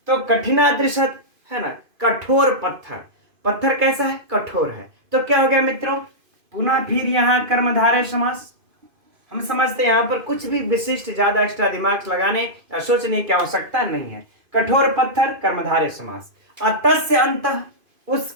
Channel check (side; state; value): left; late; 2.5 ms